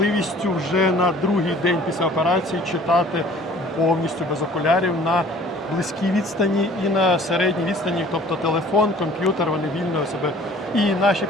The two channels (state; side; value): normal; both; correlation 0.51